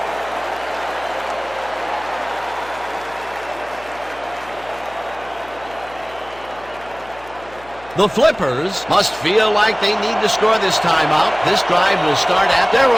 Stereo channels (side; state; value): left; noise; hum, 22 dB below the sound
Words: The Flippers must feel like they need to score this timeout. This drive will start at their